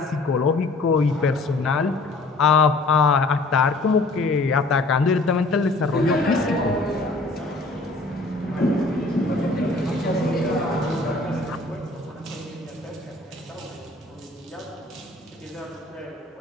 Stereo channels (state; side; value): quieter; right; 3.1 dB